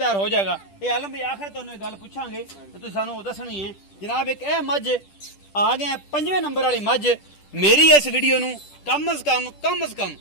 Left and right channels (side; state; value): right; late; 10 ms